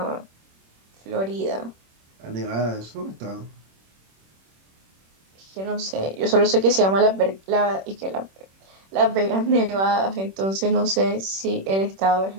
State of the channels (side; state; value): left; late; 26 ms